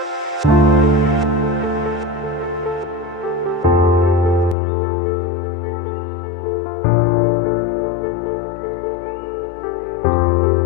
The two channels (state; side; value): drops out; right; at 4.5 s